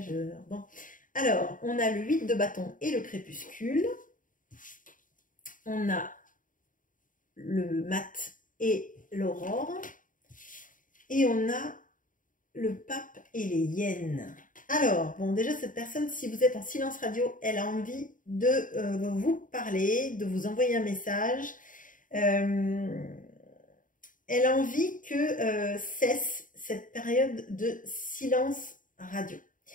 Bon, alors, on a le 8 de bâton et le crépuscule. On a le mat et l'aurore. Et on a le pape et les hyènes. Alors, bon, déjà, cette personne, si vous êtes en silence radio, elle a envie de vous parler, de vous envoyer un message. Elle a envie que cesse cette période de silence radio.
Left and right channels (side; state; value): right; late; 0.39 ms